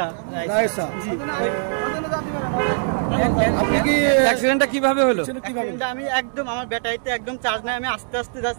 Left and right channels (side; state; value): left; silent; digital silence